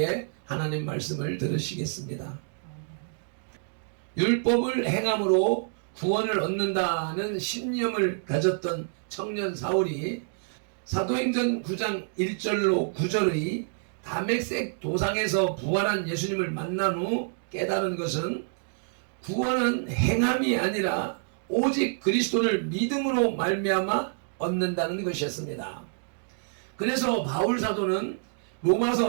하나님 말씀을 들으시겠습니다. 율법을 행함으로 구원을 얻는다는 신념을 가졌던 청년 사울이 사도행전 9장 1절로 9절의 다메섹 도상에서 부활한 예수님을 만난 후 깨달은 것은 구원은 행함이 아니라 오직 그리스도를 믿음으로 말미암아 얻는다는 것이었습니다. 그래서 바울 사도는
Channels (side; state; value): left; silent; digital silence